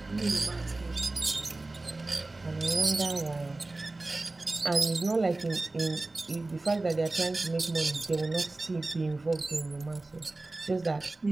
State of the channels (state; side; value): quieter; left; 3.1 dB